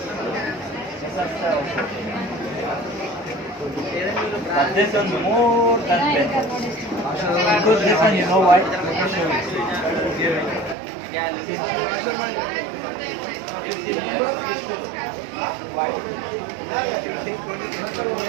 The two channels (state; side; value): drops out; left; at 10.8 s